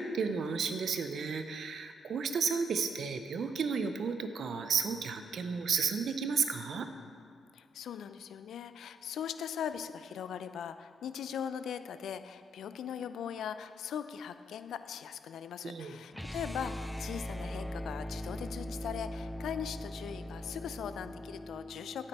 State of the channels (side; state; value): both; normal; correlation 0.73